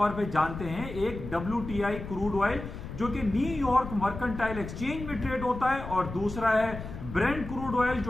पे जानते हैं, एक WTI क्रूड ऑयल जो कि न्यूयॉर्क मर्केंटाइल एक्सचेंज में ट्रेड होता है, और दूसरा है ब्रेंट क्रूड ऑयल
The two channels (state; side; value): noise; left; rumble, 10 dB below the sound